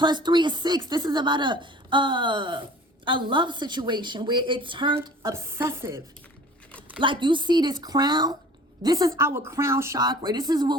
3 is 6. This is about a love situation where it turned obsessive. Like, you see this crown? This is our crown chakra. This is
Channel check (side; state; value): both; normal; correlation 0.46